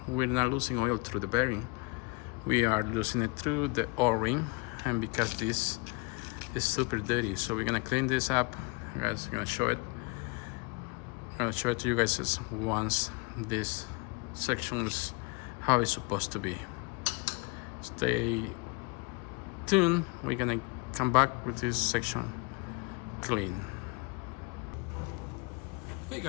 We're not losing oil through the bearing. We are losing it through the O-ring, and because this is super dirty. So we're gonna clean this up. I'm gonna show it. I'm gonna show it to you guys once this section is how it's supposed to be. Stay tuned. We're gonna come back with this section clean. Hey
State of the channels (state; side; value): quieter; right; 29.9 dB